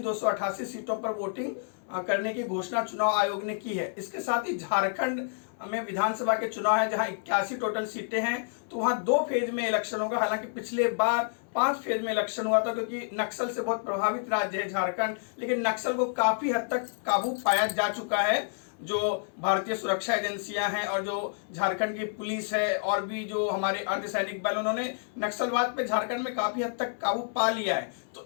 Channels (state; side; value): silent; right; digital silence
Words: 288 सीटों पर वोटिंग करने की घोषणा चुनाव आयोग ने की है। इसके साथ ही झारखंड में विधानसभा के चुनाव है जहां 81 टोटल सीटें हैं, तो वहां 2 फेज में इलेक्शन होगा। हालांकि पिछले बार 5 फेज में इलेक्शन हुआ था क्योंकि नक्सल से बहुत प्रभावित राज्य है झारखंड, लेकिन नक्सल को काफी हद तक काबू पाया जा चुका है। जो भारतीय सुरक्षा एजेंसियां हैं और जो झारखंड की पुलिस है और भी जो हमारे अर्धसैनिक बल, उन्होंने नक्सलवाद पे झारखंड में काफी हद तक काबू पा लिया है। तो